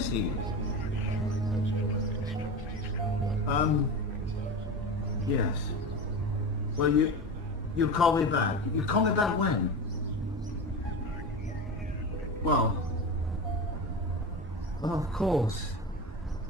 he? Yes. Well, you'll call me back. You call me back when? Well, of course.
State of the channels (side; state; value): both; normal; correlation 0.25